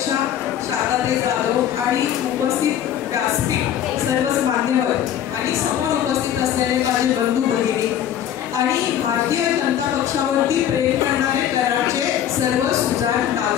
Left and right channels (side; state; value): right; quieter; 10.4 dB